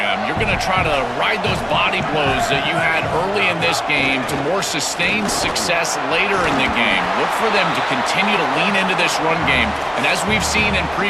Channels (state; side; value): identical; both; correlation 1.00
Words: You're going to try to ride those body blows that you had early in this game to more sustained success later in the game. Look for them to continue to lean into this run game. And as we've seen in